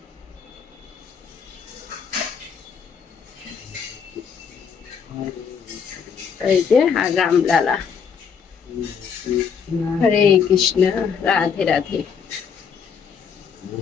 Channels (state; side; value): quieter; right; 6.7 dB